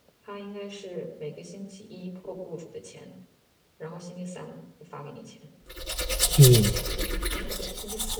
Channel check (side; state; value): both; identical; correlation 1.00